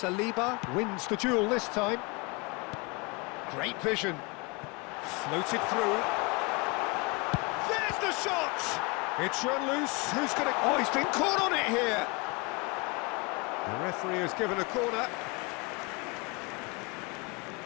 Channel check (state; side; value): quieter; right; 27.9 dB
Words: wins the duel this time. Great vision. Floated through. There's the shot! It's run loose. Who's going to... Oh, he's been caught on it here! The referee has given a corner.